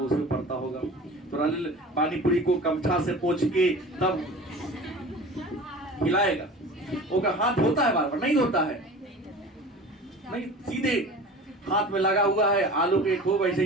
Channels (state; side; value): normal; both; correlation 0.38